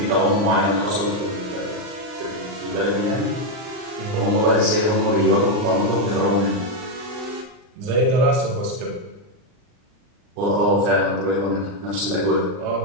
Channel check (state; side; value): late; left; 39 ms